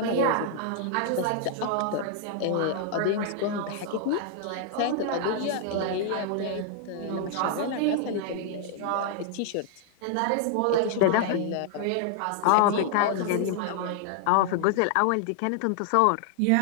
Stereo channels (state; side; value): different; both; correlation 0.00